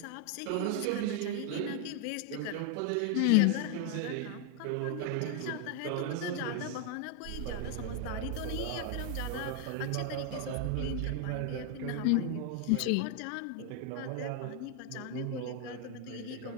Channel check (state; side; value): different; both; correlation 0.01